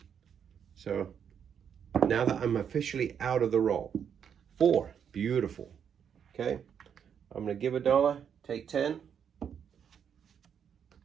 So now that I'm officially out of the roll. 4, beautiful. Okay, I'm gonna give $1, take 10,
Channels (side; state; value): left; quieter; 7.9 dB